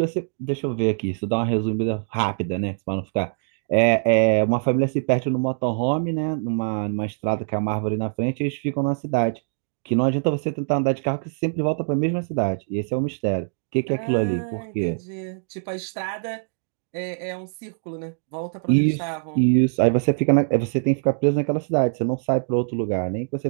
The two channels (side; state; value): left; silent; digital silence